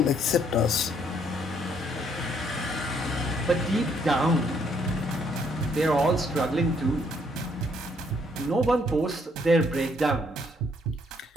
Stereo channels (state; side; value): normal; both; correlation 0.68